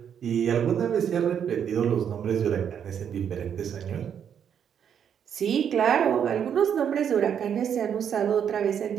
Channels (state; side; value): quieter; left; 8.3 dB